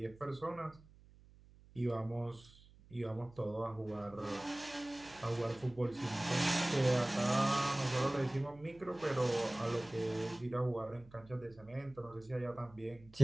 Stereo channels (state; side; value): noise; right; hum, 23 dB below the sound